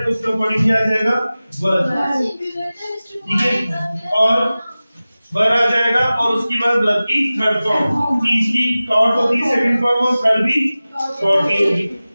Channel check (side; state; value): both; inverted; correlation -0.97